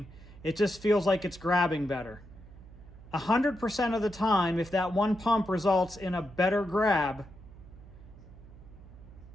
it just feels like it's grabbing better. 100% of the time, if that one pump results in a better grab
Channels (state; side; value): noise; right; hum, 19 dB below the sound